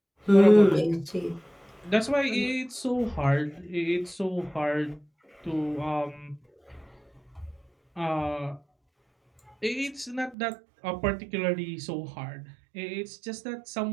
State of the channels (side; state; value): left; drops out; at 10.4 s